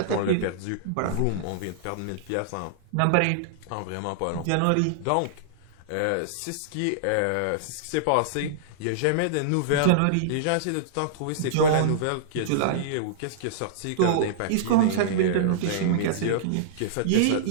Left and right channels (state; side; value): different; both; correlation -0.02